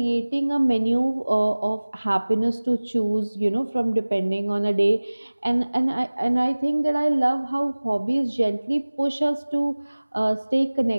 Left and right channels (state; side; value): inverted; both; correlation -1.00